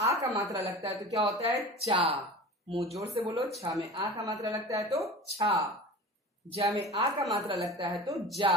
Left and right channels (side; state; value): both; normal; correlation 0.36